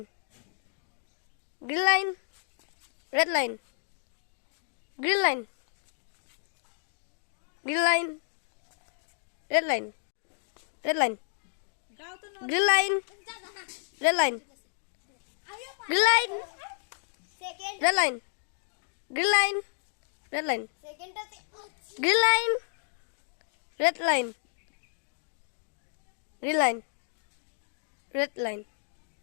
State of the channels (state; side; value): silent; right; digital silence